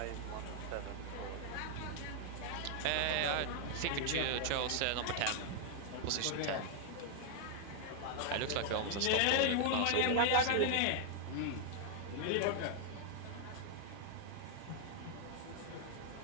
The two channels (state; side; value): different; both; correlation 0.00